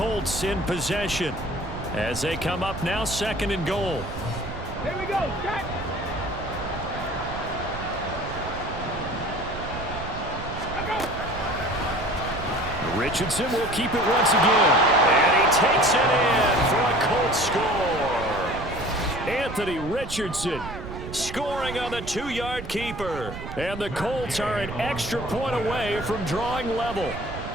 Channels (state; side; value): noise; right; rumble, 9 dB below the sound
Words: in possession as they come up now 2nd and goal. Here we go, set. Richardson will keep it once again. And he takes it in for a Colts score. Anthony Richardson scoring on the 2-yard keeper. And the Colts are an extra point away from drawing level.